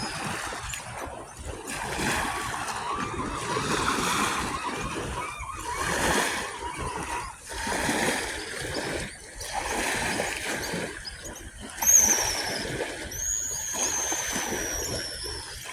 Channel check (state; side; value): identical; both; correlation 1.00